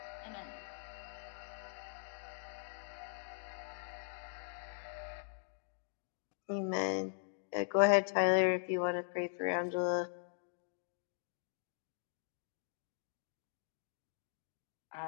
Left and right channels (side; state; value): right; silent; digital silence